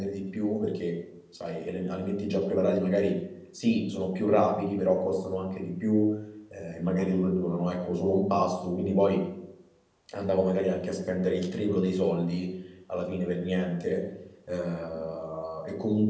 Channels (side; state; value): both; identical; correlation 1.00